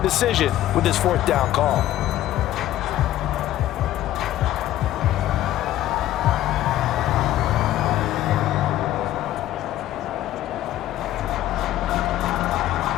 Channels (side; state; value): right; quieter; 13.6 dB